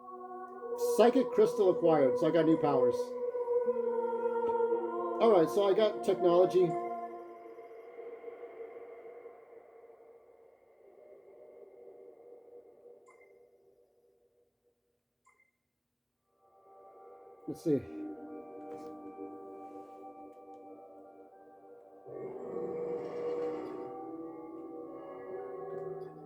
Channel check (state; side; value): identical; both; correlation 1.00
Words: Psychic crystal acquired, so I got new powers. Alright, so I got technology. Let's see.